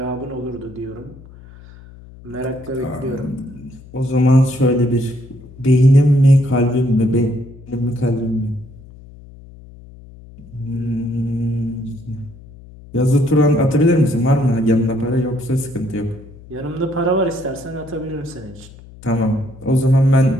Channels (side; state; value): left; noise; hum, 20 dB below the sound